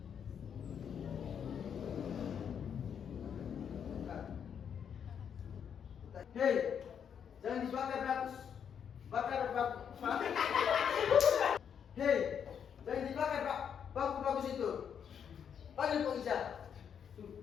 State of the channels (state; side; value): quieter; right; 7.9 dB